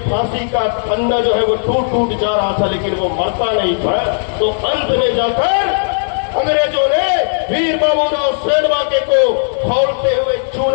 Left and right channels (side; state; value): right; silent; 59 dB below the other